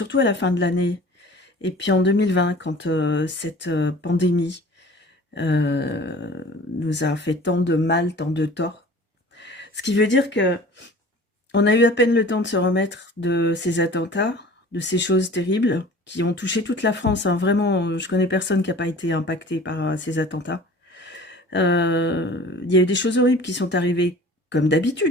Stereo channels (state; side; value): normal; both; correlation 0.44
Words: à la fin de l'année. Et puis en 2020, quand cette pandémie nous a fait tant de mal, tant de tort. Ce qui veut dire que on a eu à peine le temps de se remettre de ces attentats, de ces choses terribles qui ont touché toute la France. Hein. Vraiment, je connais personne qui n'a pas été impacté par ces attentats. Il y a eu des choses horribles qui sont arrivées, comme